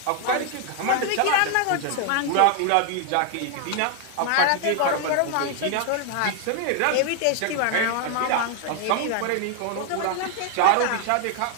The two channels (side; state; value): both; different; correlation 0.00